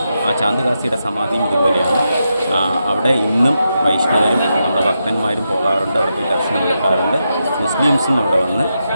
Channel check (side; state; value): both; inverted; correlation -0.86